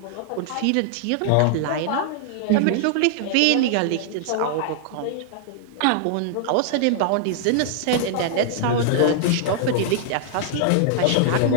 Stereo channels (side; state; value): both; different; correlation -0.01